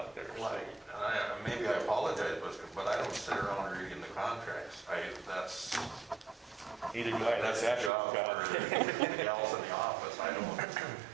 there. So. Maybe I apologize, but I don't sit around reading the contracts. That's Neither do I. That's the job Ashley's for the gals in the office. I don't.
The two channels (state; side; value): drops out; left; at 7.9 s